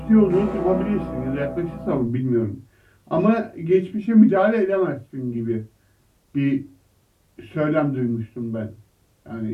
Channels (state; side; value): identical; both; correlation 1.00